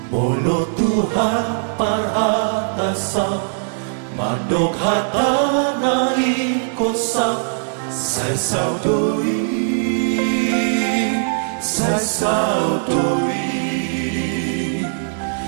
mono Tuhan parhatasa mandok hatanai kosam sai saudoi sai saudoi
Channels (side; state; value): left; silent; 66 dB below the other